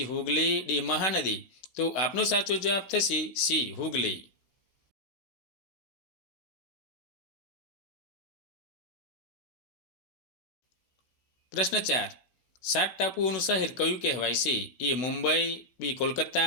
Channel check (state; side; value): late; right; 16 ms